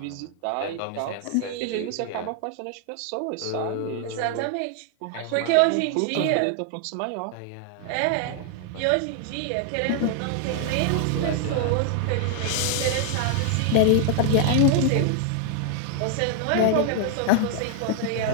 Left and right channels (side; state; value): both; different; correlation 0.00